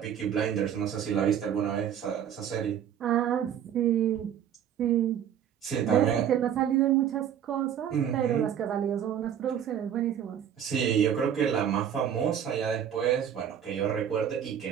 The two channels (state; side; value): quieter; left; 9.2 dB